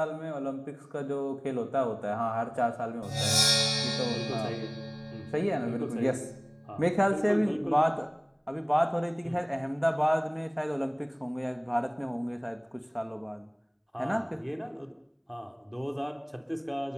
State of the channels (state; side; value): identical; both; correlation 1.00